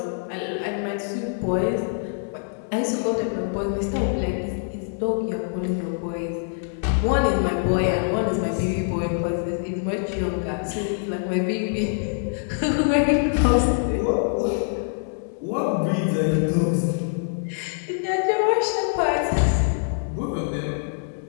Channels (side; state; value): right; silent; 62 dB below the other